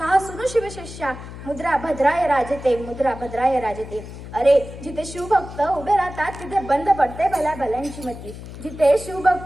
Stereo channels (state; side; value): noise; left; hum, 12 dB below the sound